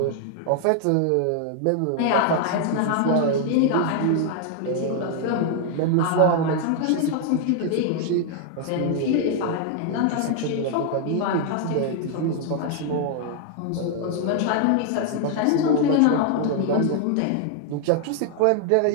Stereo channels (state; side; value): different; both; correlation 0.00